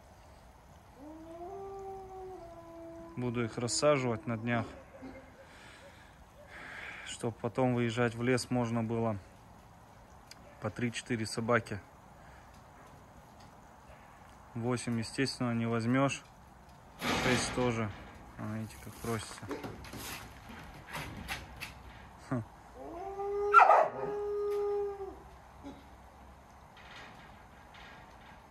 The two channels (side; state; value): both; identical; correlation 1.00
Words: Буду их рассаживать на днях, чтобы потом выезжать в лес можно было по 3-4 собаки. 8, естественно, не возьмешь. 6 тоже. Видите, как просится.